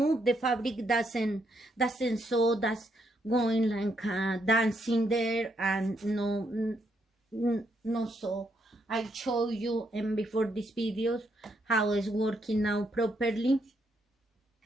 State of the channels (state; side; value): normal; both; correlation 0.76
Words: the fabric doesn't sew, that's going like dancing there, and no sew. I show you and before these videos how it's working now properly.